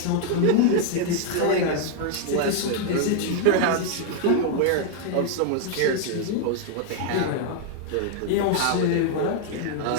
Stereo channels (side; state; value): both; different; correlation 0.00